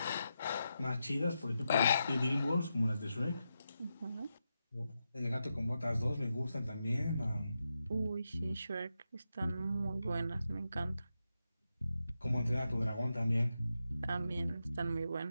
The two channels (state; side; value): inverted; both; correlation -0.87